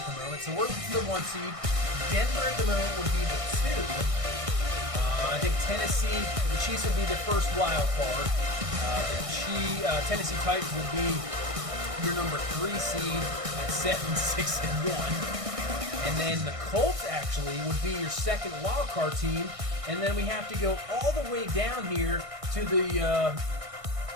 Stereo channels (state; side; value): late; left; 1.6 ms